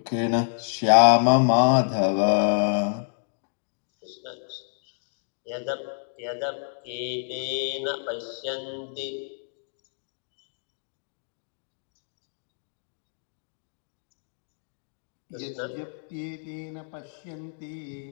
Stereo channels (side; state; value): right; silent; digital silence